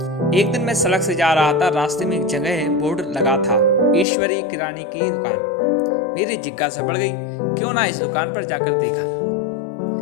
एक दिन मैं सड़क से जा रहा था। रास्ते में एक जगह बोर्ड लगा था, ईश्वरी किराने की दुकान। मेरी जिज्ञासा बढ़ गई, क्यों ना इस दुकान पर जाकर देखा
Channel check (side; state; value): right; drops out; at 4.0 s